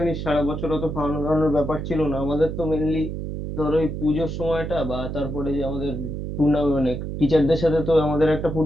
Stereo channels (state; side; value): noise; right; hum, 5 dB below the sound